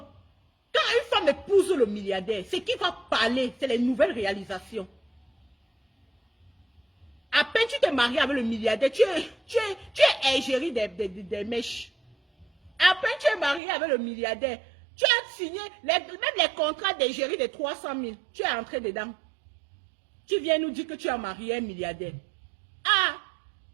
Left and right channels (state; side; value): drops out; left; at 13.6 s